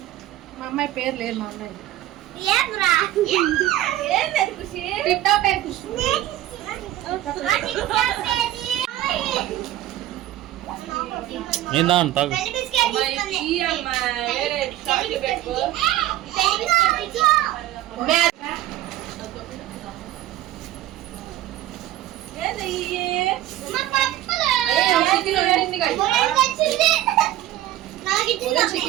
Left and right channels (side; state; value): left; quieter; 14.0 dB